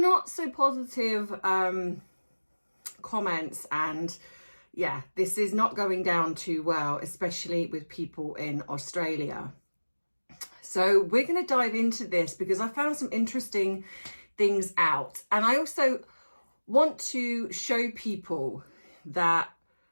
so positive comments. And yeah, this is not going down too well, especially with people in Australia. So we're going to dive into this because I found some interesting things out. And I also want to show people that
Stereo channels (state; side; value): inverted; both; correlation -1.00